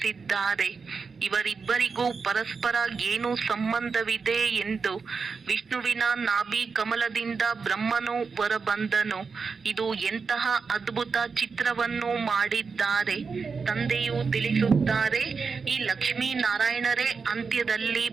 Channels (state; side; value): quieter; left; 5.1 dB